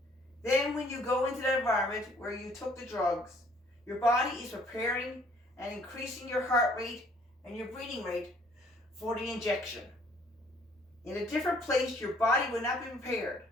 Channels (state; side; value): normal; both; correlation 0.61